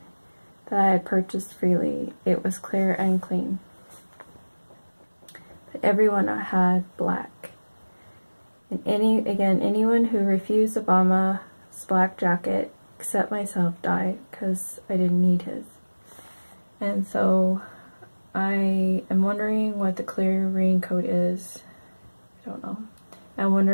that I had purchased freely. It was clear and clean. But everyone had black. And anyone who refused Obama's black jacket, except myself, died, because I didn't need his. And so I am wondering what the clear raincoat is. I don't know. I'm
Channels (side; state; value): both; inverted; correlation -1.00